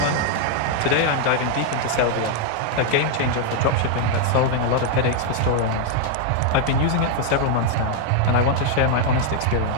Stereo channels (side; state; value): both; different; correlation 0.00